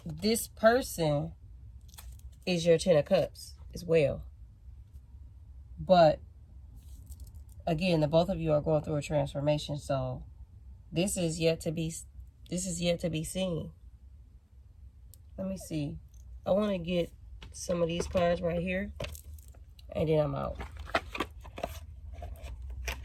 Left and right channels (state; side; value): identical; both; correlation 1.00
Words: this person is your 10 of Cups as well. But again, the both of you are going through a transformation. So this is yet to be seen. Let me see. I want to get some of these cards right here, and then I'm out.